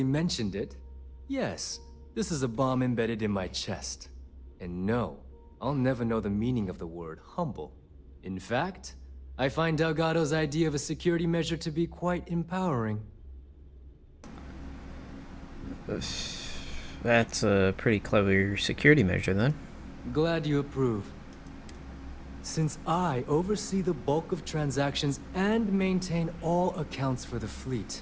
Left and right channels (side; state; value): both; identical; correlation 1.00